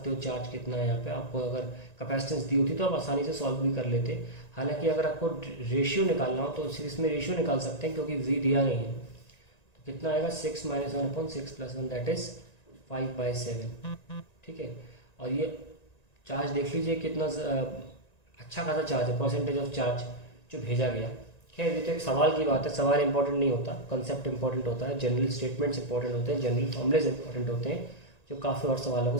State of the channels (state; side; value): late; right; 1.9 ms